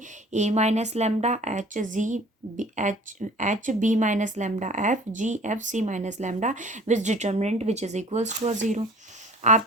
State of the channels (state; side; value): normal; both; correlation 0.48